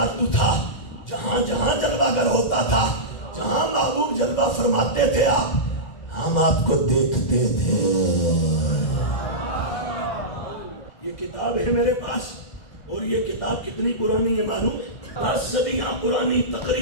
تو تھا، جہاں جہاں جلوہ گر ہوتا تھا، جہاں محبوب جلوہ فرماتے تھے آپ، ہم آپ کو دیکھتے تھے۔ یہ کتاب ہے میرے پاس، اور یہ کتاب کتنی پرانی ہے معلوم ہے؟ 10 صدیاں پرانی،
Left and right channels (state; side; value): late; right; 2.0 ms